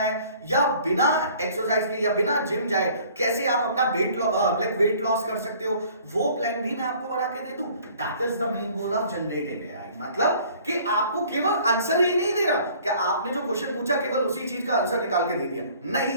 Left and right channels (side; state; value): both; inverted; correlation -0.53